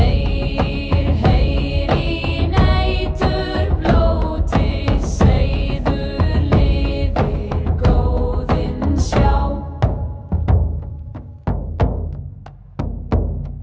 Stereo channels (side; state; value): both; identical; correlation 1.00